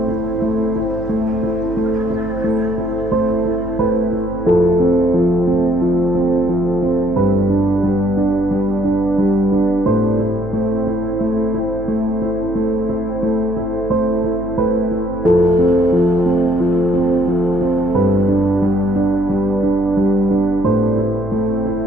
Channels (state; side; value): noise; right; hum, 13 dB below the sound